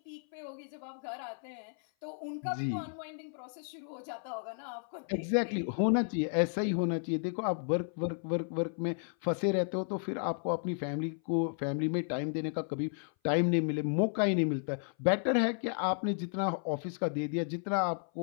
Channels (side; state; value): right; silent; 56 dB below the other